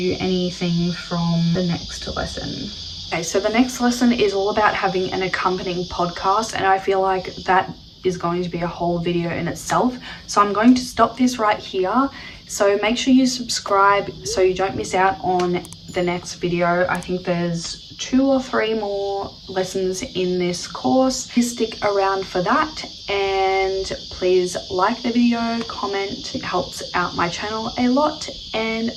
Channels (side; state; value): both; identical; correlation 1.00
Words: anything from the next lesson. Okay, so the next lesson is all about having an accompanying podcast, and I feel like that is going to be a whole video in itself. So I'm going to stop this right here. So make sure you subscribe so you don't miss out on the next video. I think there's 2 or 3 more lessons in this course. Please stick around for that, and please like the video, comment. It helps out my channel a lot, and